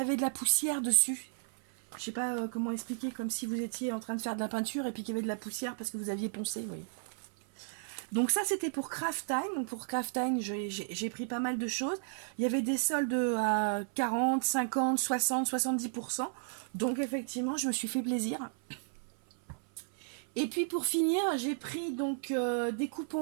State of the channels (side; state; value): left; silent; 55 dB below the other